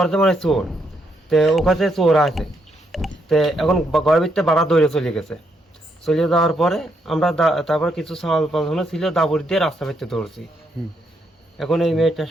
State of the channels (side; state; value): both; normal; correlation 0.77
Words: মানে চোর, তে ও কাছে চোর আছে। তে এখন ঘরের ভিতরে বাড়া দৌড়ে চলে গেছে। চলে যাওয়ার পরে আমরা তারপর কিছু সওয়াল পাল্টানো ছিল, দাবড়ি দিয়ে রাস্তা ভিতরে দৌড়ছি। এখন এই মেয়েটার